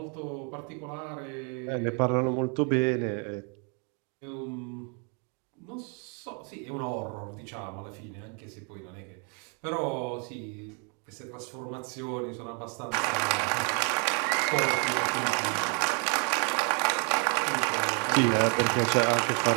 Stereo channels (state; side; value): quieter; left; 38.2 dB